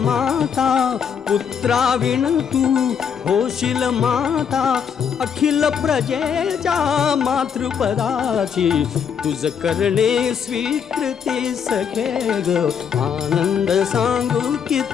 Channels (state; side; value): quieter; right; 7.4 dB